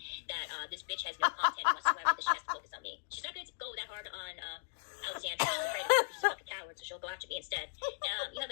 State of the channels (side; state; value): right; silent; digital silence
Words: that this bitch has no content whatsoever, that she has to focus on me. She's not going to go that hard on Alexandra. I'm afraid of her because she's a fucking coward, so she'll go after me instead. You have